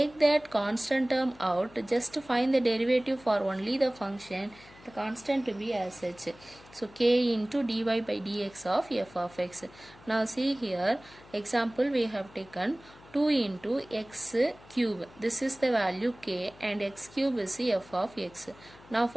that constant term out, just to find the derivative for only the function, the constant to be as such. So k into dy by dx of f of x. Now see here, example we have taken 2 into x cube. This is the value k, and x cube is the f of x. Now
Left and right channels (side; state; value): left; noise; hum, 23 dB below the sound